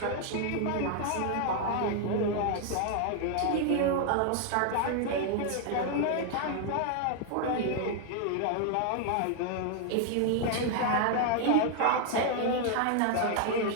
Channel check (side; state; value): both; different; correlation 0.00